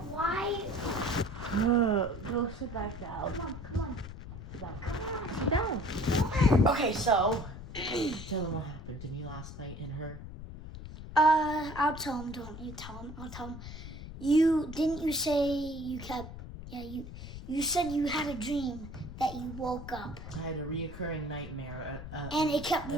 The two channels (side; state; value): left; noise; rumble, 11 dB below the sound